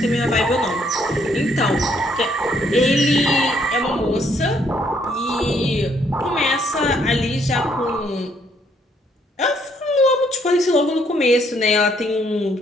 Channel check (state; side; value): normal; both; correlation 0.69